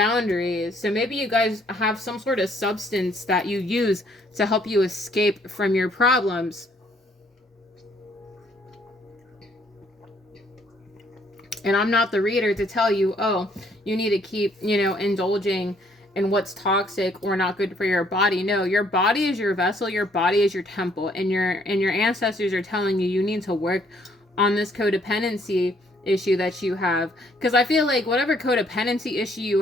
So maybe you guys have some sort of substance that you use to help you escape from your problems. And I'm not the reader to tell you, oh, you need to keep, indulging in what's toxic or not good for your body. No, your body is your vessel, your body is your temple, and your ancestors are telling you need to work on this codependency issue that you have. Because I feel like whatever codependency issue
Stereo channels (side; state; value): both; normal; correlation 0.65